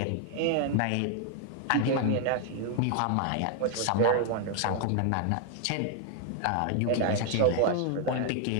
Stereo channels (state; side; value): different; both; correlation 0.00